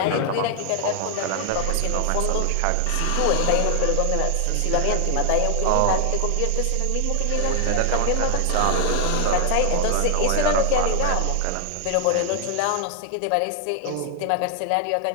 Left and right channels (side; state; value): both; different; correlation 0.00